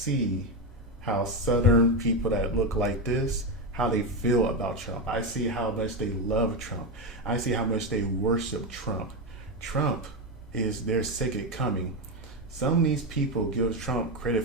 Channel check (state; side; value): normal; both; correlation 0.11